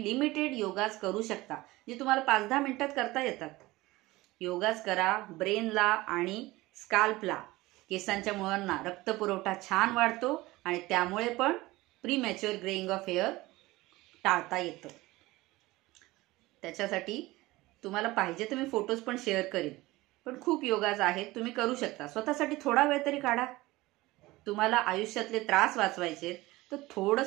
लिमिटेड योगाज करू शकता, जे तुम्हाला 5-10 मिनिटात करता येतात. योगाज करा. ब्रेनला आणि स्काल्पला, केसांच्या मुळांना रक्तपुरवठा छान वाढतो आणि त्यामुळे पण प्रीमॅच्युअर ग्रेइंग ऑफ हेअर टाळता येतं. त्याच्यासाठी तुम्हाला पाहिजे तर मी फोटोज पण शेअर करीन, पण खूप योगाज आहेत, तुम्ही करू शकता. स्वतःसाठी थोडा वेळ तरी काढा. तुम्हाला आयुष्यातले त्रास वाचवायचे तर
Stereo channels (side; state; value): left; quieter; 19.5 dB